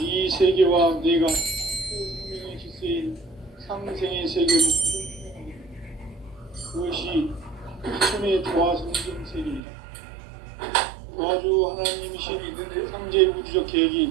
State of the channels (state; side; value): drops out; left; at 9.6 s